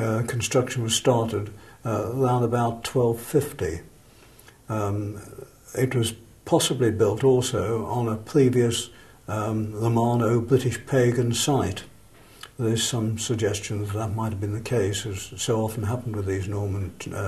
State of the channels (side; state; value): both; identical; correlation 1.00